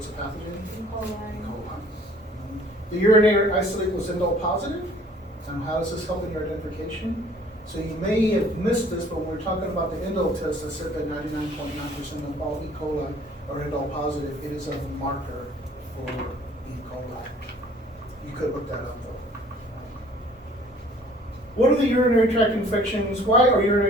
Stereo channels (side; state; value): both; normal; correlation 0.54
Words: the pathogen? E. coli. E. coli. The urinary isolate was indole positive. And how does this help in your identification? So you may have missed this, but when we're talking about the indole test, I said that 99.9% of all E. coli are indole positive. It is a marker for E. coli. You could look that up though. What are the urinary tract infections? Why are